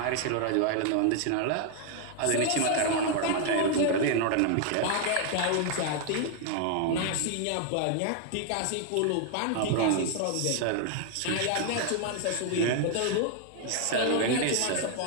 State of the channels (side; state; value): both; different; correlation 0.00